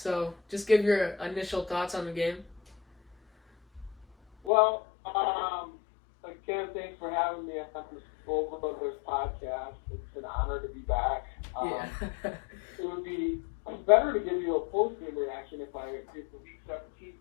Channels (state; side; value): drops out; right; at 4.5 s